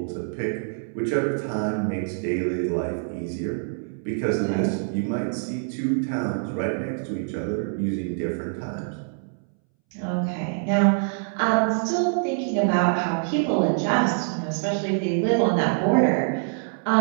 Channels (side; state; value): left; silent; 62 dB below the other